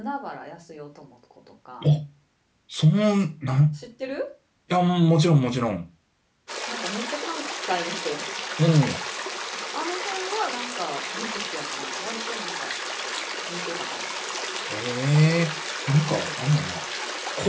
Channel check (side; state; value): both; identical; correlation 1.00